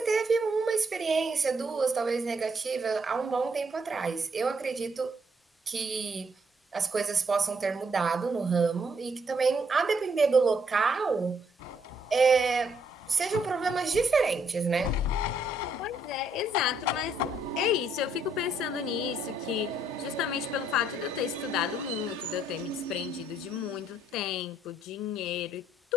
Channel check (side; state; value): both; normal; correlation 0.71